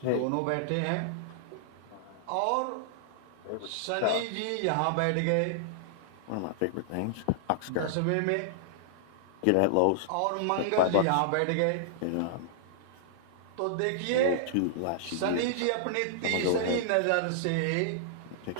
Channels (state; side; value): different; both; correlation -0.01